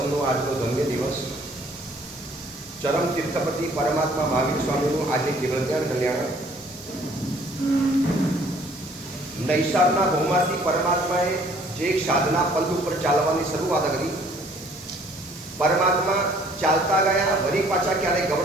આજનો ધન્ય દિવસ ચરમ તીર્થપતિ પરમાત્મા મહાવીર સ્વામીનું આજે કેવળ જ્ઞાન કલ્યાણ. નૈસારના ભૌમાંથી પરમાત્માએ જે એક સાધના પંથ ઉપર ચાલવાની શરૂઆત કરી, પરમાત્મા ચાલતા ગયા, વળી પાછા ક્યારે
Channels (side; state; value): both; normal; correlation 0.58